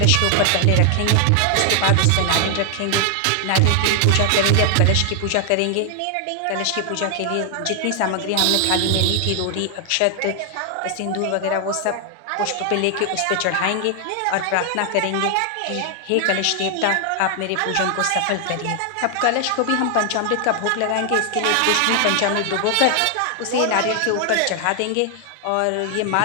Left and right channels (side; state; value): both; different; correlation 0.00